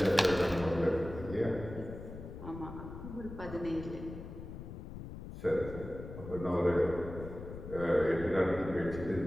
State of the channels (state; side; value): noise; left; rumble, 11 dB below the sound